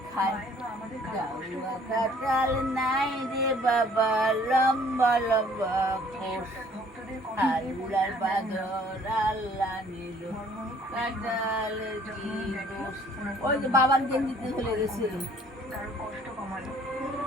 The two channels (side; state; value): both; normal; correlation 0.57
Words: খায় গাউয়া কাটাল নাই রে বাবা লম্বা লম্বা কোষ আল্লাহর বাগর আল্লাহ নিল কাটাল কি দোষ ওই যে বাবার গেঞ্জিতে চলে গেছে